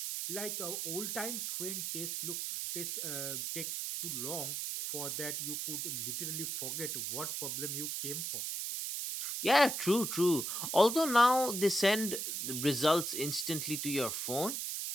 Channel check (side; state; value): right; noise; hiss, 3 dB below the sound